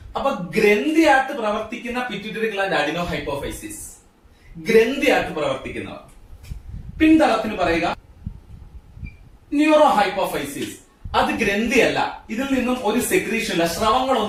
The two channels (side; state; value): both; identical; correlation 1.00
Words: അപ്പൊ ഗ്രന്ഥിയായിട്ട് പ്രവർത്തിക്കുന്ന പിറ്റ്യൂട്ടറി ഗ്ലാൻഡ് അഡിനോ ഹൈപ്പോഫൈസിസ്, ഗ്രന്ഥിയായിട്ട് പ്രവർത്തിക്കുന്നവർ. പിന്തളത്തിന് പറയുക ന്യൂറോ ഹൈപ്പോഫൈസിസ്. അത് ഗ്രന്ഥിയല്ല, ഇതിൽ നിന്നും ഒരു സെക്രീഷൻ ഇല്ല,